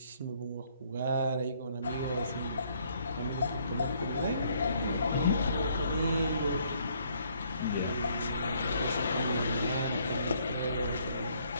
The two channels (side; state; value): both; inverted; correlation -0.66